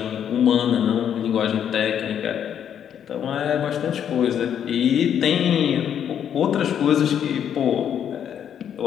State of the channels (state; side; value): quieter; right; 9.0 dB